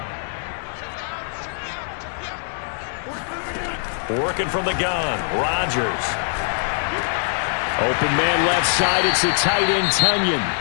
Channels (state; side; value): silent; right; digital silence